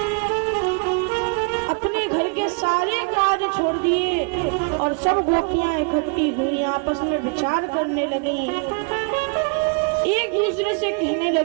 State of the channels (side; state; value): left; quieter; 34.5 dB